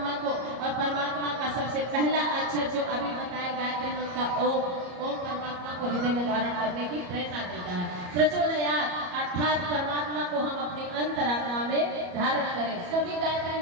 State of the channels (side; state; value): left; late; 34 ms